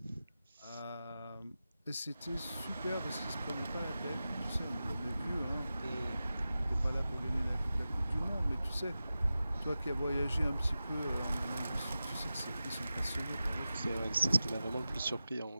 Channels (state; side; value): inverted; both; correlation -0.93